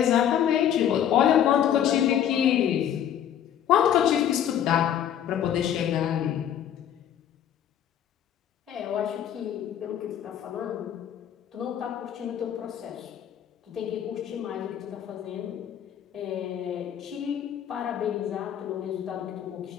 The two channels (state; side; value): quieter; right; 9.9 dB